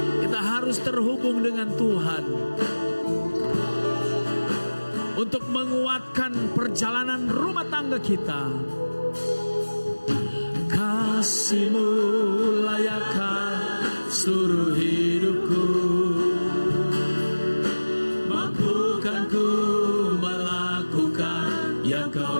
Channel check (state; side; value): inverted; both; correlation -1.00